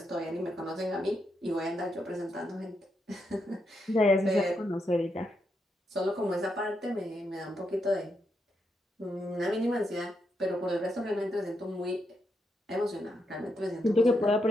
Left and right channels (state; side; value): normal; both; correlation 0.82